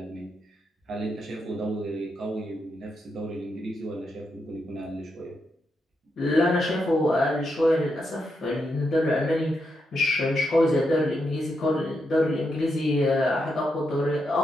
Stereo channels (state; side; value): normal; both; correlation 0.83